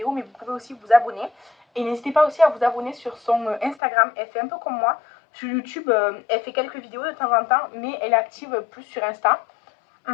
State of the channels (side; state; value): right; drops out; at 3.8 s